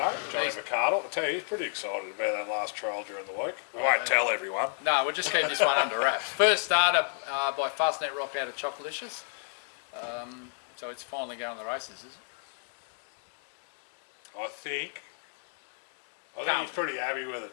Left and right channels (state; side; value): silent; right; digital silence